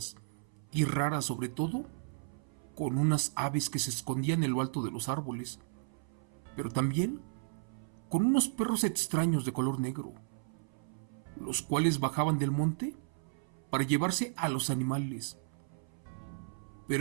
y raras, sobre todo con unas aves que se escondían en lo alto de los árboles, pero también con unos perros extraños de color negro, los cuales bajaban del monte para llevarse a los animales.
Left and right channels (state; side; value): silent; left; 55 dB below the other